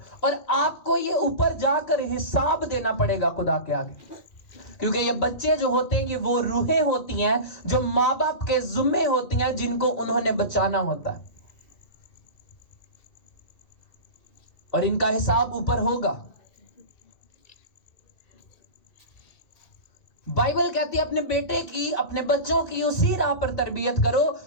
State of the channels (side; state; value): right; late; 2.3 ms